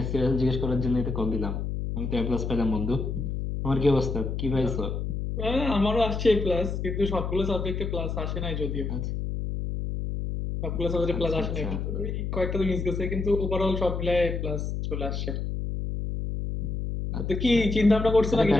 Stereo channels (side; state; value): left; noise; hum, 3 dB below the sound